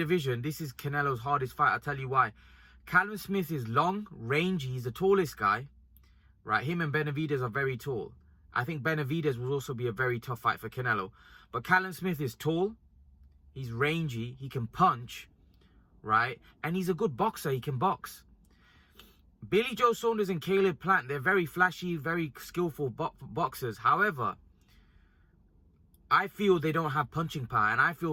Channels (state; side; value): identical; both; correlation 1.00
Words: this is Canelo's hardest fight. I'll tell you why. Callum Smith is long, rangy. He's the tallest guy. Right? Him and Benavidez are very tall. I think Benavidez will also be a very tough fight for Canelo. But Callum Smith is tall. He's rangy. He can punch. Right? And he's a good boxer. He can box. Billy Joe Saunders and Caleb Plant, they're very flashy, very skillful boxers. However, I feel they don't have punching power. And I